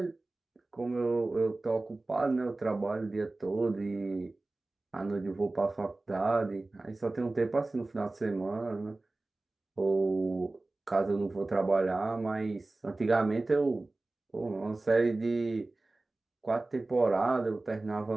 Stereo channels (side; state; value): left; quieter; 3.0 dB